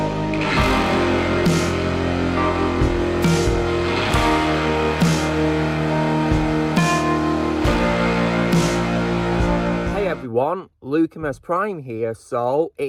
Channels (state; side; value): identical; both; correlation 1.00